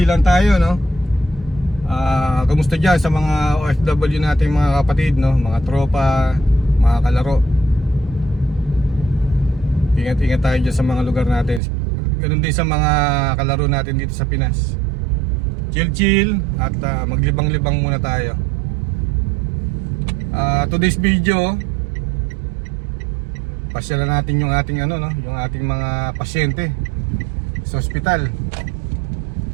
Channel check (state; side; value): drops out; left; at 11.6 s